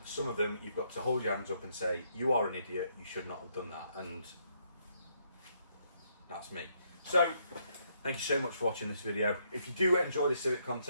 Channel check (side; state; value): both; inverted; correlation -0.73